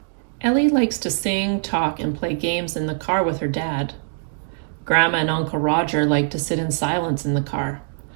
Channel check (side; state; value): left; silent; digital silence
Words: Ellie likes to sing, talk, and play games in the car with her dad. Grandma and Uncle Roger like to sit in silence in the car.